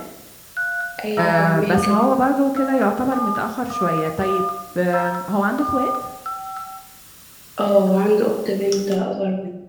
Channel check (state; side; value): identical; both; correlation 1.00